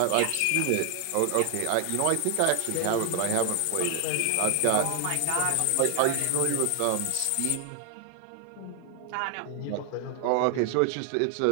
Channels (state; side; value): different; both; correlation 0.00